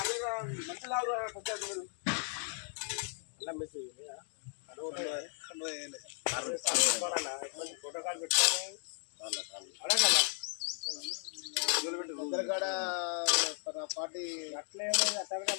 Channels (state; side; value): silent; right; 54 dB below the other